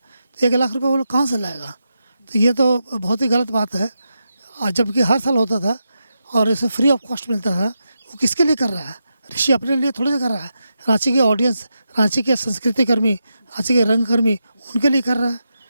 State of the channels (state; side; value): inverted; both; correlation -0.86